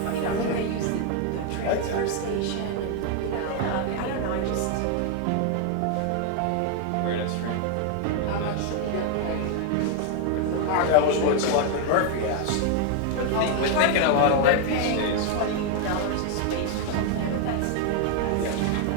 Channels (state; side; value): different; both; correlation 0.00